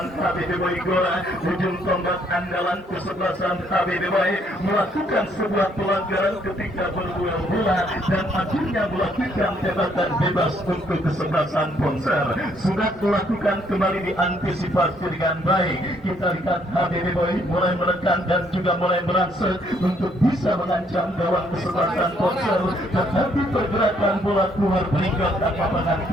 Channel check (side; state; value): both; normal; correlation 0.68